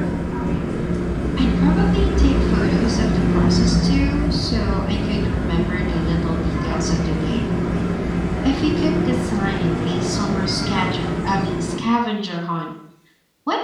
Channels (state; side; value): identical; both; correlation 1.00